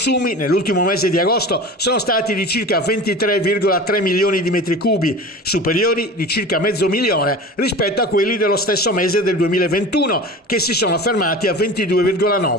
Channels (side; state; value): both; normal; correlation 0.35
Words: nell'ultimo mese di agosto sono stati di circa 23,3 milioni di metri cubi, superiori di circa mezzo milione rispetto a quelli dello stesso mese del 2021, che si sono fermati a